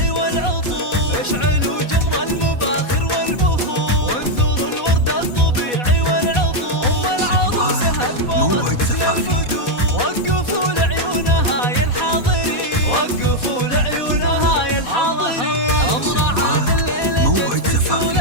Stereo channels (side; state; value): right; late; 4.1 ms